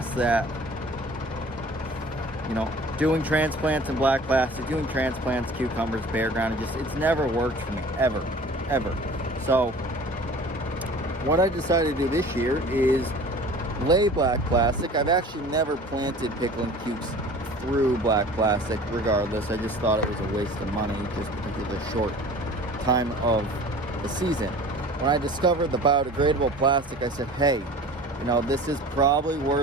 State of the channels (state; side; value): normal; both; correlation 0.44